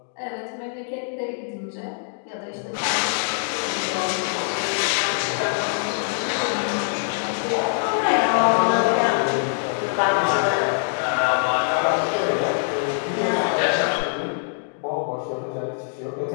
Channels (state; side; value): silent; right; digital silence